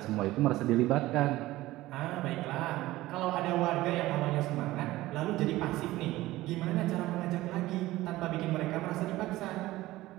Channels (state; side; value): quieter; left; 17.3 dB